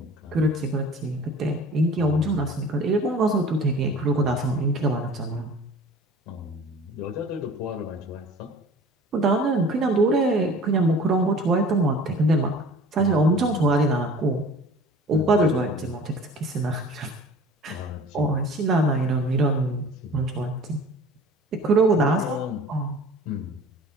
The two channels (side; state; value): both; normal; correlation 0.45